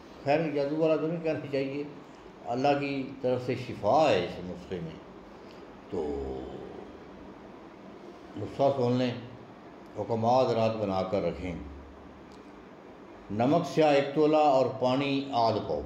خیر جادو والا تو نہیں کہنا چاہیے، اللہ کی طرف سے شفا ہے اس نسخے میں۔ تو نسخہ سن لیں، حکمات رات بنا کر رکھیں۔ نمک سیاہ 1 تولہ اور پانی آدھ پاؤ۔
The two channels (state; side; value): identical; both; correlation 1.00